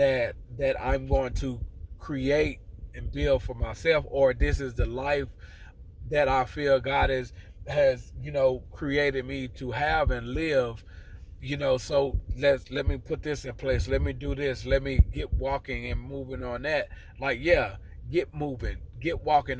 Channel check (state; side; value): identical; both; correlation 1.00